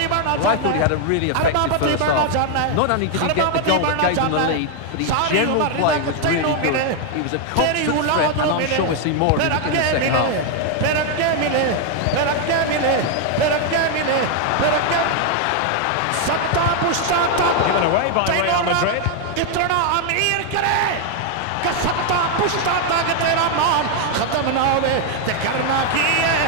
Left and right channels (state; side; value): different; both; correlation 0.00